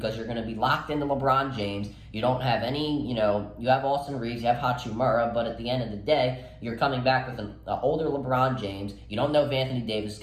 you're going to be locked into LeBron James. You don't have any, you have Austin Reeves, you have Hachimura, but at the end of the day, you're coming back with an older LeBron James. You don't know if Anthony Davis is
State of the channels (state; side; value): identical; both; correlation 1.00